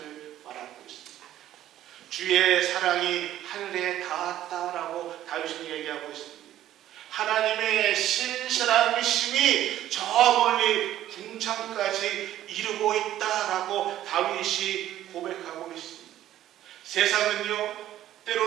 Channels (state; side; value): quieter; left; 12.7 dB